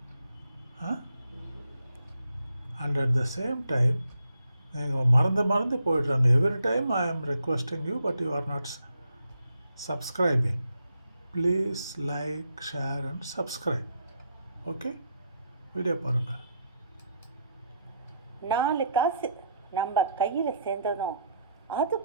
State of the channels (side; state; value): both; inverted; correlation -0.74